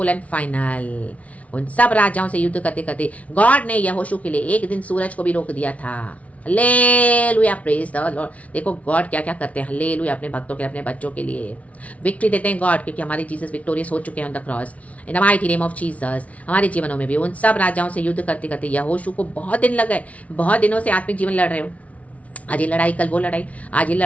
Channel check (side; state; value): right; late; 0.067 ms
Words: एंड फाइनल। उन सब राजाओं से युद्ध करते करते गॉड ने यहोशू के लिए एक दिन सूरज को भी रोक दिया था। Hallelujah, praise the Lord. देखो गॉड क्या क्या करते हैं, हालेलुया, अपने भक्तों के लिए, अपने बच्चों के लिए विक्ट्री देते हैं गॉड, क्योंकि हमारे जीसस विक्टोरियस हो चुके हैं on the cross, in the mighty name of Jesus. हमारे जीवनों में भी उन सब राजाओं से युद्ध करते करते यहोशू को बहुत दिन लग गए, बहुत दिनों से आत्मिक जीवन लड़ रहे हो, आज ये लड़ाई, कल वो लड़ाई, आज ये